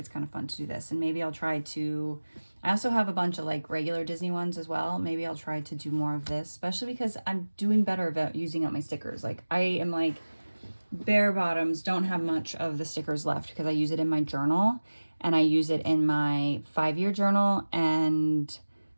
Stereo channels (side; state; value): both; inverted; correlation -1.00